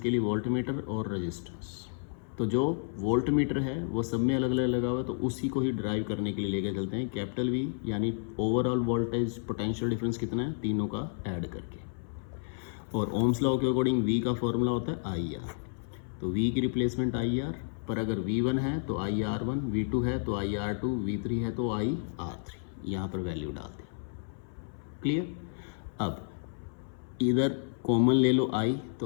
लिए वोल्ट मीटर और रेजिस्टेंस। तो जो वोल्ट मीटर है वो सब में अलग अलग लगा हुआ है, तो उसी को ही ड्राइव करने के लिए लेकर चलते हैं। कैपिटल वी यानी ओवरऑल वोल्टेज पोटेंशियल डिफरेंस कितना है, तीनों का ऐड करके। और ओम्स लॉ के अकॉर्डिंग वी का फॉर्मूला होता है आई आर, तो वी की रिप्लेसमेंट आई आर, पर अगर V1 है तो आई आर वन, V2 है तो आई आर टू, V3 है तो आई आर थ्री, यहाँ पर वैल्यू डाल दी। क्लियर। अब इधर कॉमन ले लो आई,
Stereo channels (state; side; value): silent; right; 57 dB below the other